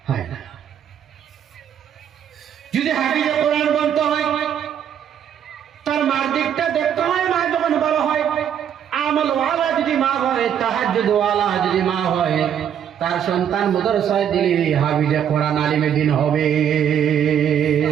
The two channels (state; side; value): quieter; left; 9.1 dB